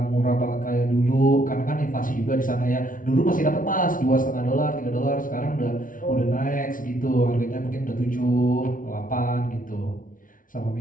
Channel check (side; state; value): right; late; 0.39 ms